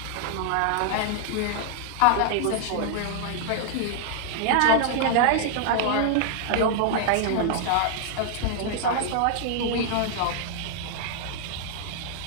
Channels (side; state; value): both; different; correlation -0.01